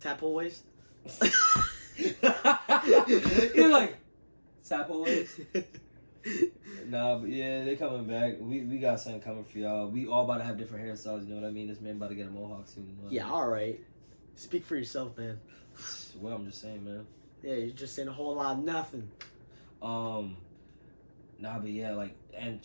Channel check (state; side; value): inverted; both; correlation -1.00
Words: Tadpole waves. You're like tadpole waves. Nah, but yeah, they coming back. We got something coming for y'all. We all about to have different hairstyles. You know what I mean? This man about to get a mohawk soon. You know Yeah, all right. Speak for yourself, man. Well, I'm just saying, man. Yeah, you're just saying a whole lot of nothing. Nah, but yeah, like, and